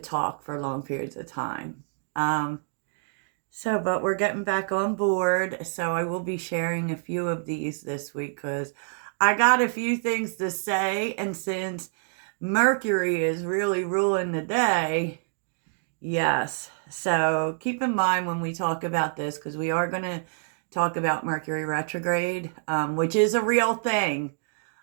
for long periods of time. Um, but we're getting back on board. So I will be sharing a few of these this week because I got a few things to say. And since Mercury is really ruling the day, yes. So keep in mind when we talk about this, because we are going to talk about Mercury retrograde, which is a real thing.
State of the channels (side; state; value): left; silent; digital silence